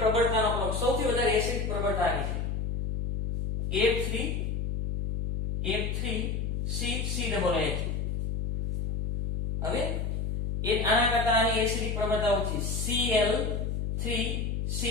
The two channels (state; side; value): noise; left; hum, 1 dB below the sound